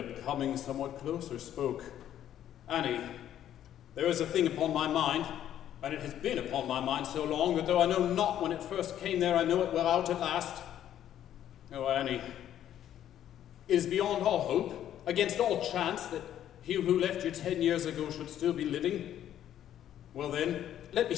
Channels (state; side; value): quieter; right; 11.1 dB